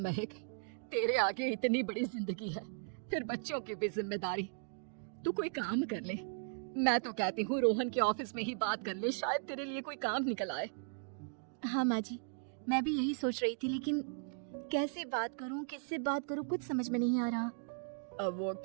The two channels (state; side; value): silent; left; digital silence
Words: तेरे आगे इतनी बड़ी जिंदगी है, फिर बच्चों की भी जिम्मेदारी। तू कोई काम कर ले। मैं तो कहती हूँ रोहन के ऑफिस में ही बात कर ले, शायद तेरे लिए कोई काम निकल आए। हाँ माँ जी, मैं भी यही सोच रही थी, लेकिन कैसे बात करूँ, किससे बात करूँ, कुछ समझ में नहीं आ रहा। अब वो